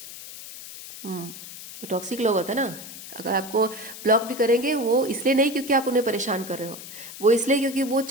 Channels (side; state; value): left; noise; hiss, 13 dB below the sound